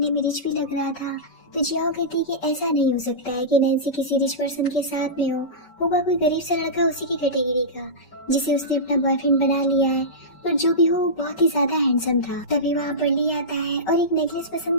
में रिच भी लग रहा था। तो जियाओ कहती है कि ऐसा नहीं हो सकता है कि नैन्सी किसी रिच पर्सन के साथ में होगा कोई गरीब सा लड़का उसी की कैटेगरी का जिसे उसने अपना बॉयफ्रेंड बना लिया है, पर जो भी हो वो बहुत ही ज्यादा हैंडसम था। तभी वहाँ पर ली आता है और एक नेकलेस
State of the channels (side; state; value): right; late; 5.3 ms